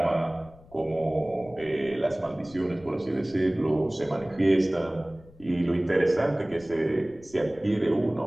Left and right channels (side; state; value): left; noise; rumble, 23 dB below the sound